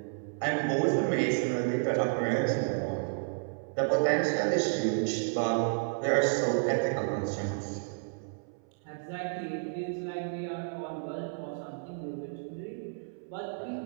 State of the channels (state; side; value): silent; left; 57 dB below the other